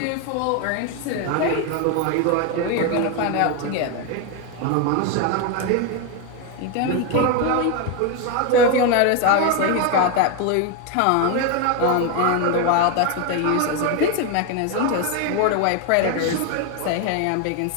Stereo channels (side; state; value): both; different; correlation 0.01